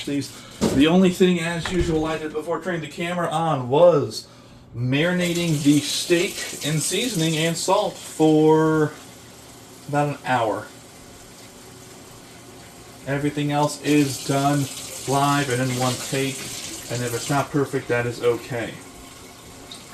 these. The only thing, as usual, I did before turning the camera on was marinating the steak in seasoning and salt for about an hour. Everything else is done live and in one take, and if it's not perfect, that is okay.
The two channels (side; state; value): both; identical; correlation 1.00